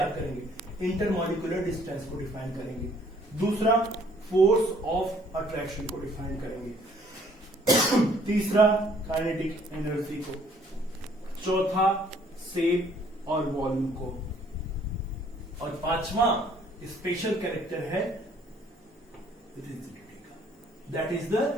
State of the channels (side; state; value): both; normal; correlation 0.61